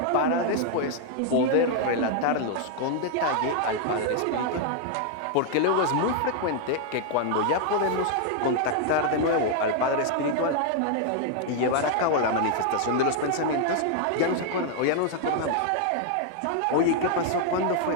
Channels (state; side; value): different; both; correlation 0.00